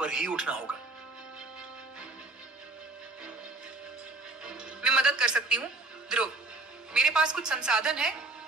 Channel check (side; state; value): left; quieter; 3.1 dB